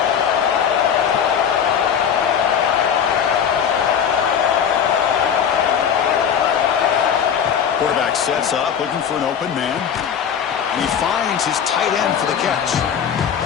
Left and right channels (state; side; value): quieter; right; 8.0 dB